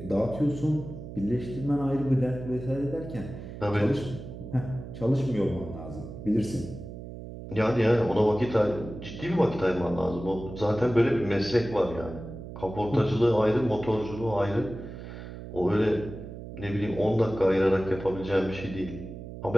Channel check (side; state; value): right; noise; hum, 11 dB below the sound